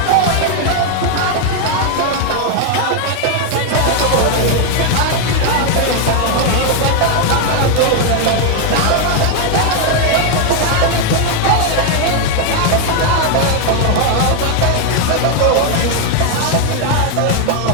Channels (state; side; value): different; both; correlation 0.01